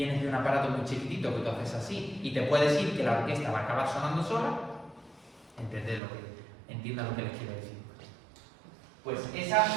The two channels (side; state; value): left; drops out; at 6.0 s